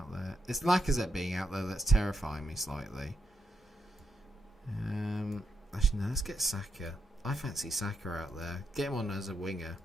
there. It's Lacazette being out there that's terrifying me slightly. Actually, no, let's get Saka. I fancy Saka out there. Get him on as a winger.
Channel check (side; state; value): both; normal; correlation 0.82